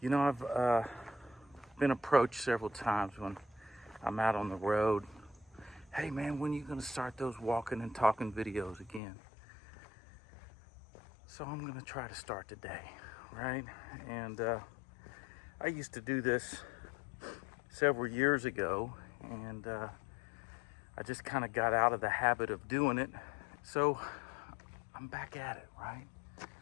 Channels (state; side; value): drops out; right; at 9.0 s